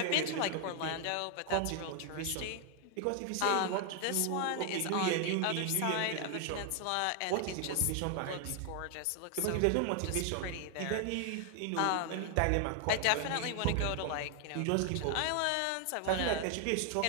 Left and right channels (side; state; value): both; different; correlation 0.00